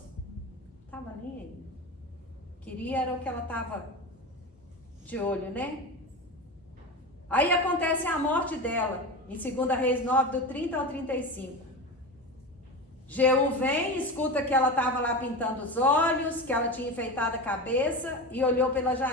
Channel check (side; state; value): both; normal; correlation 0.25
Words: Estava nem aí. Queria era o que ela estava de olho, né? Aí acontece a morte dela, em 2 Reis 9, do 30 ao 35. Jeú vem, escuta que ela estava lá pintando os olhos, que ela tinha enfeitado a cabeça e olhou pela